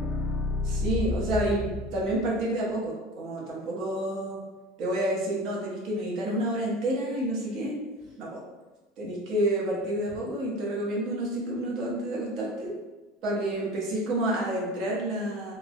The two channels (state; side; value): normal; both; correlation 0.36